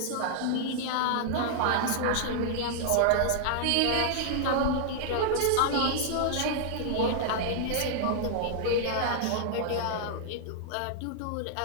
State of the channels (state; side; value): different; both; correlation -0.01